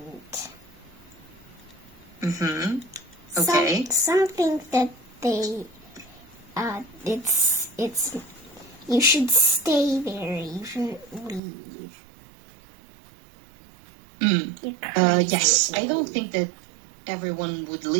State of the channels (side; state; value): left; drops out; at 11.4 s